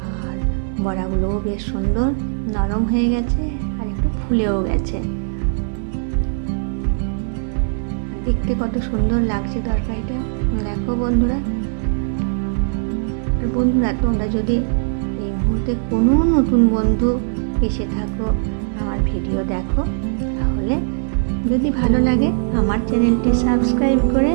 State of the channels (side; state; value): left; silent; digital silence